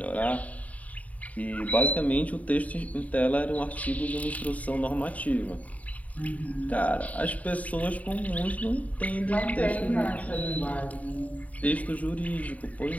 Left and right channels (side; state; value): right; late; 0.070 ms